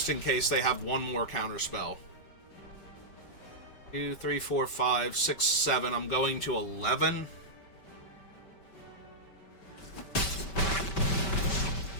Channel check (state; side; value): late; right; 5.2 ms